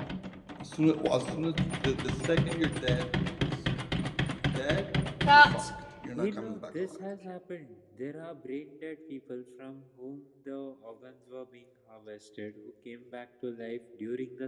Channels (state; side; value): identical; both; correlation 1.00